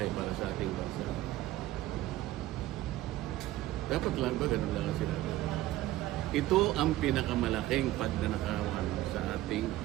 para sa ating bansa, dapat lang ba ganun lang ang sinabi? Ito ang pinakamalaking pagnanakawan sa ating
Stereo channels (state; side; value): quieter; left; 15.6 dB